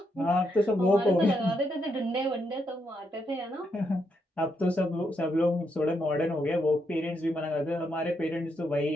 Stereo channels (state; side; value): normal; both; correlation 0.79